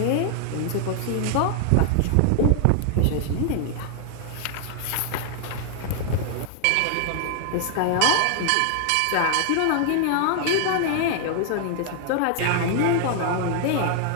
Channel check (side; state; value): both; different; correlation 0.00